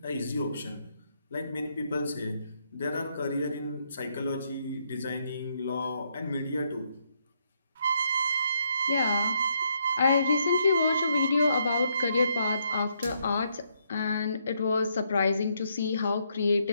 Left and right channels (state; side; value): inverted; both; correlation -0.75